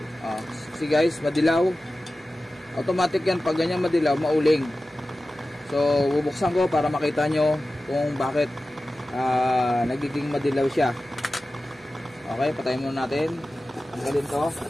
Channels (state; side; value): normal; both; correlation 0.95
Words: See guys, madilaw. Automatic yan, pag ganyan madilaw, mauling. So, bubuksan ko para makita nyo kung bakit nagiging madilaw siya. Okay, patayin muna natin. Tanggalin to.